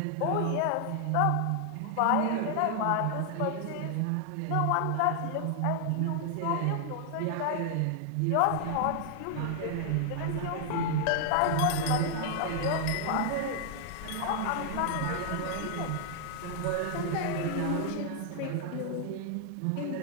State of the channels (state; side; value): different; both; correlation 0.00